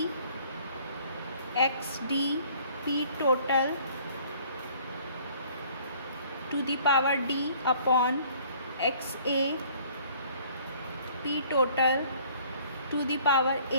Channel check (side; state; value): both; inverted; correlation -0.56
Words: X D P total to the power D upon X A P total to the power